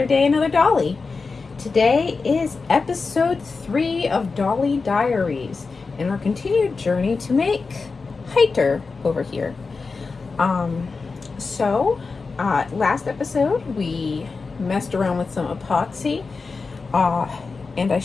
day, another Dolly. Today is episode 3 of Dollie Diaries and our continued journey to make Heiter over here. Last episode we messed around with some epoxy and I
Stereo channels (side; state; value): right; quieter; 4.4 dB